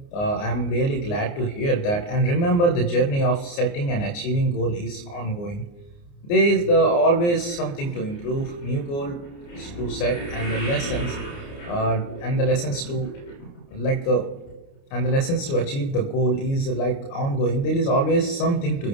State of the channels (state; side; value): late; right; 29 ms